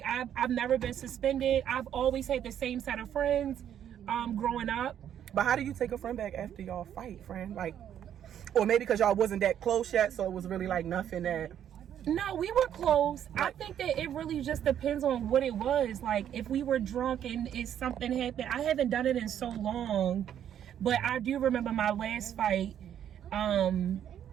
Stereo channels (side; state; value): left; quieter; 9.9 dB